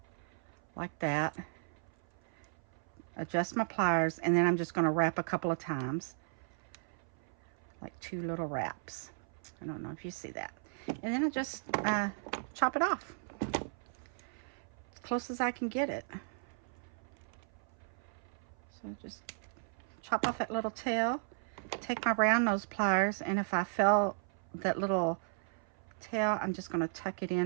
like that. Adjust my pliers, and then I'm just going to wrap a couple of times, like 2 little wraps. I don't know if you see that. And then I just chop it off as close as I can get it. So just chop off that little tail. Take my round nose pliers, and if I feel that little tail, I'm just going to tuck it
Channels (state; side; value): silent; left; 54 dB below the other